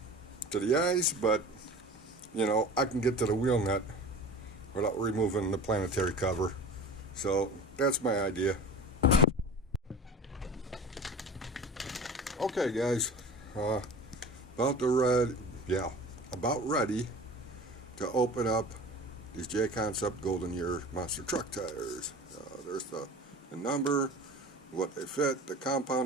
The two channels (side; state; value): both; normal; correlation 0.37